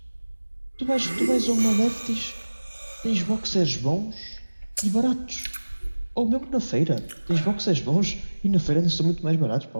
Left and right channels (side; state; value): both; inverted; correlation -1.00